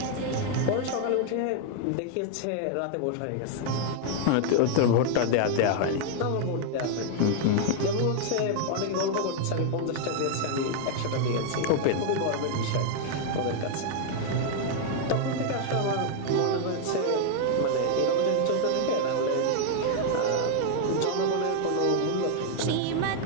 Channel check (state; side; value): different; both; correlation 0.00